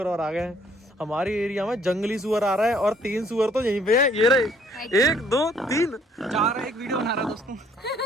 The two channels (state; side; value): normal; both; correlation 0.63